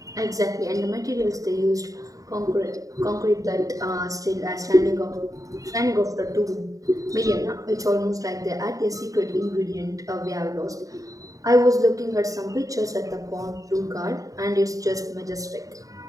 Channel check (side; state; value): left; late; 0.16 ms